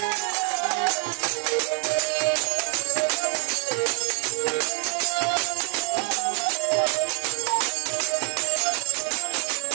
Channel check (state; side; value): quieter; left; 28.4 dB